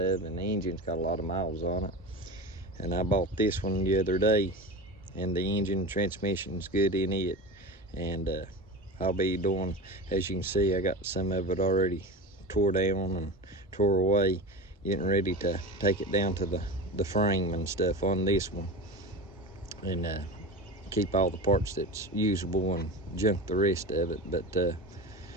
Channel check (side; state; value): both; normal; correlation 0.29